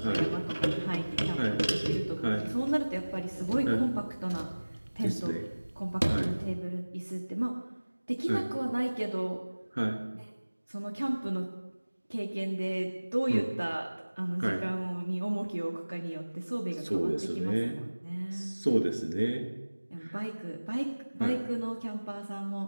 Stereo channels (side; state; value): both; inverted; correlation -1.00